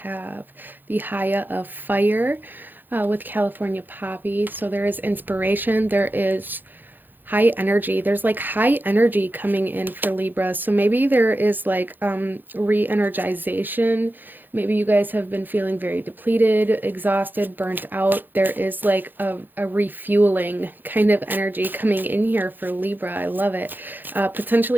the Haya of Fire with California Poppy. So there is inspiration, there is high energy. There's like high energy coming in for Libra. So maybe there is like re-energization. Maybe you guys have been feeling very depleted, exhausted, burnt out. There is like a refueling kind of energy coming in here for Libra. I love it.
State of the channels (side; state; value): left; late; 0.089 ms